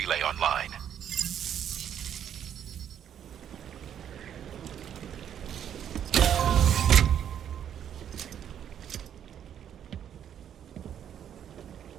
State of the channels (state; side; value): quieter; left; 9.4 dB